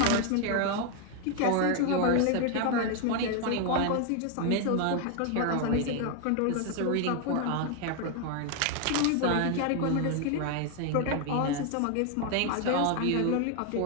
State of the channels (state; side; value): different; both; correlation 0.01